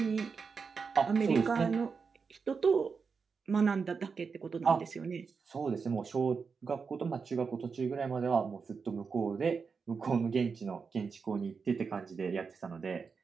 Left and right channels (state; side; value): quieter; left; 5.3 dB